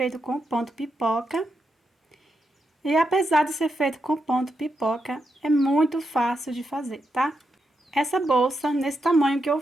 com ponto pipoca. E apesar de ser feito com ponto pipoca, é muito fácil de fazer, tá? Essa bolsa, nesse tamanho que eu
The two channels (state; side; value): normal; both; correlation 0.84